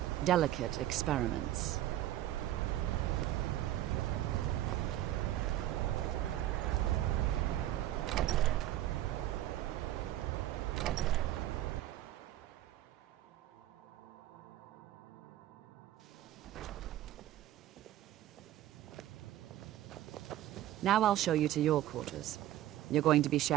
delicate experiments. Now I'll show you to your quarters. You're going to be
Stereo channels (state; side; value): quieter; left; 13.6 dB